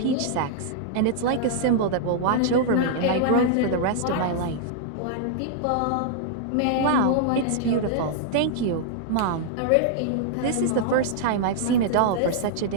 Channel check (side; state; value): both; different; correlation -0.01